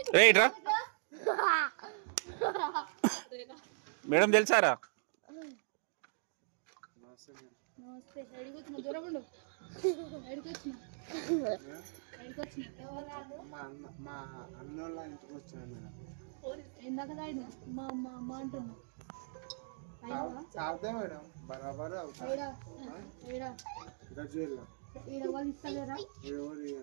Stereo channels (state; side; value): silent; left; digital silence